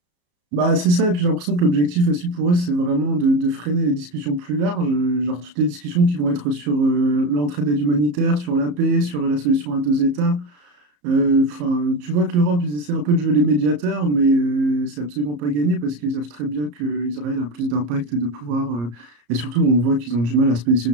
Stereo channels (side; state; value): left; late; 34 ms